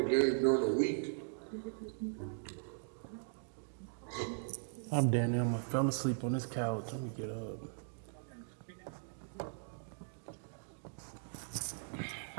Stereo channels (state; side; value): silent; left; digital silence